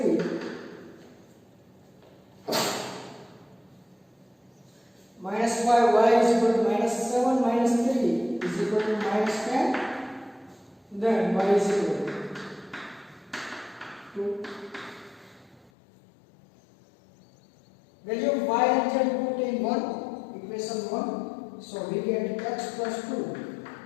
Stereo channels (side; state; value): right; drops out; at 15.7 s